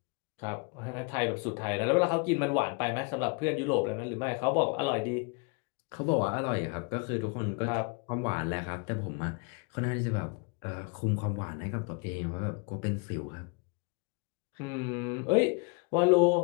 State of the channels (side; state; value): right; quieter; 32.9 dB